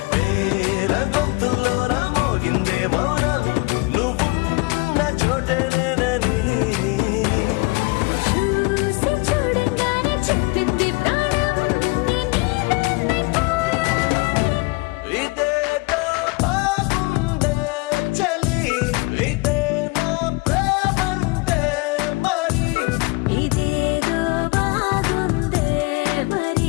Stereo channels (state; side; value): quieter; right; 25.6 dB